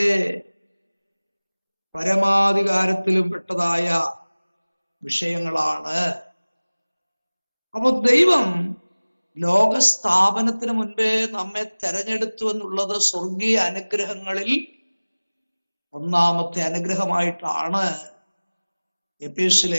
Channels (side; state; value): both; inverted; correlation -1.00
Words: പരമാധികാരത്തിലും പെട്ടതായ വിഷയങ്ങളാണ്. അപ്പോൾ ദൈവം ലോകസ്ഥാപനത്തിന് മുൻപേ നമ്മെ തെരഞ്ഞെടുത്തു എന്നുള്ളത് സ്വർഗീയ അനുഗ്രഹങ്ങളിൽ ഒന്നാമത്തെ അനുഗ്രഹമായിട്ടാണ് എഫേസ്യ